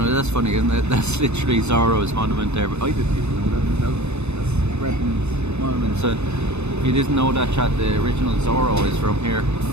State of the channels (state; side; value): late; left; 0.81 ms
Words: That's funny, isn't it? That's literally Zorro's monument there. But I didn't even know that myself. That's Breton's monument. So if you didn't know that, chat, the original Zorro is from here.